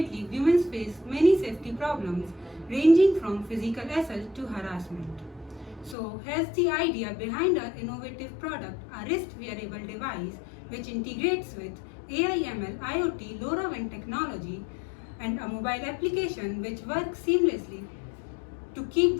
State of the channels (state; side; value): drops out; right; at 6.0 s